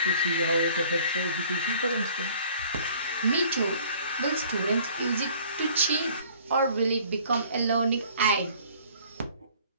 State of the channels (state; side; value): inverted; both; correlation -0.54